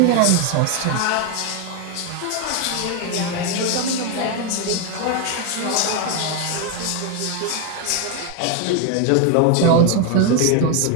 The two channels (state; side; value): different; both; correlation 0.01